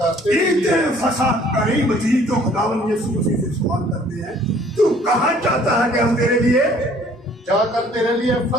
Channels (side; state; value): both; normal; correlation 0.57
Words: ईद फसा करीब थी, तो खुदावंद यीशु मसीह से सवाल करते हैं, तू कहाँ चाहता है कि हम तेरे लिए जाकर तेरे लिए